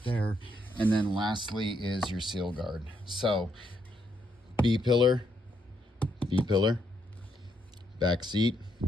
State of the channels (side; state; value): both; normal; correlation 0.76